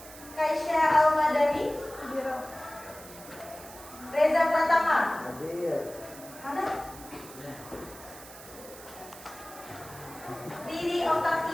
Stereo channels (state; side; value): noise; right; hiss, 17 dB below the sound